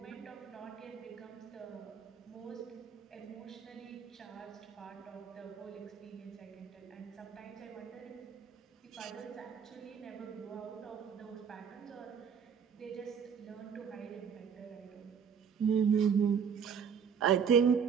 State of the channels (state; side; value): quieter; left; 7.1 dB